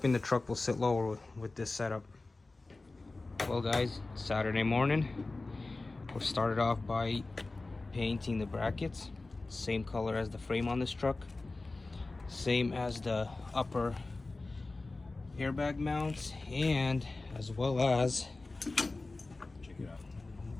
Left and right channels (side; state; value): right; quieter; 3.3 dB